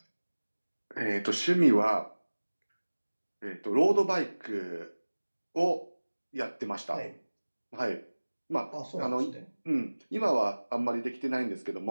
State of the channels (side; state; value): both; inverted; correlation -1.00